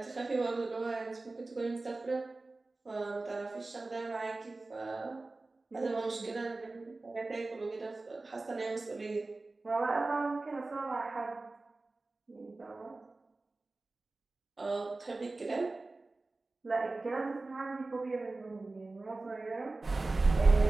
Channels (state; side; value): quieter; left; 3.3 dB